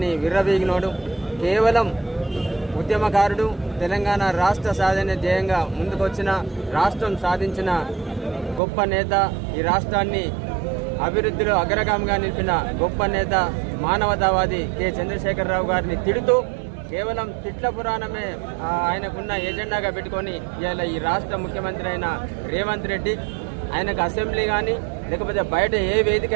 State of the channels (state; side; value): drops out; left; at 8.6 s